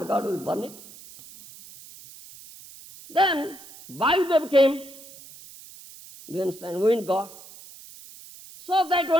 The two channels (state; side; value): noise; right; hiss, 19 dB below the sound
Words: god will burn it? Then Vayudev came. Do you understand? Wind god. So that